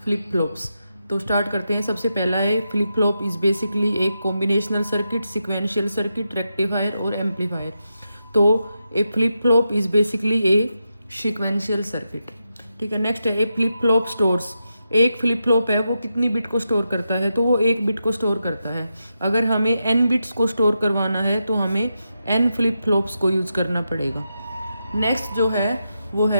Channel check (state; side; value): inverted; both; correlation -0.87